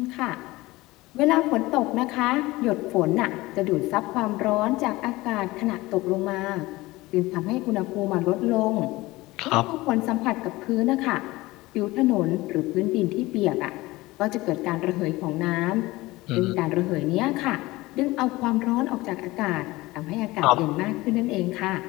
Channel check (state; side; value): quieter; right; 19.9 dB